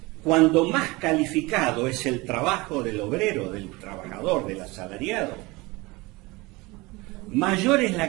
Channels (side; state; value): left; quieter; 23.3 dB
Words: cuando más calificado es el trabajo del obrero, del trabajador, del asalariado, mayor es